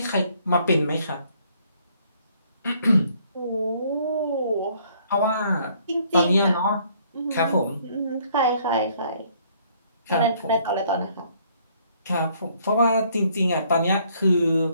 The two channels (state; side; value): inverted; both; correlation -0.64